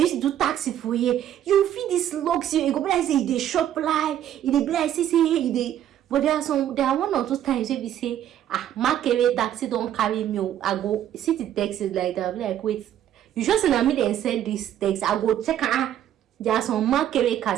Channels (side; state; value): left; quieter; 11.0 dB